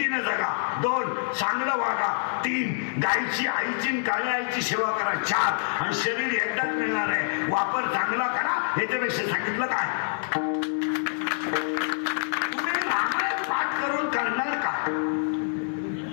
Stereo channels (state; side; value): silent; right; digital silence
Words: जगा, 2 चांगलं वागा, 3 गायची आईची काळ्या आईची सेवा करा, 4 आणि शरीर एकदाच मिळणार आहे, वापर चांगला करा. याच्यापेक्षा सांगितलं काय? तुम्ही रामायण पाठ करून करणार काय?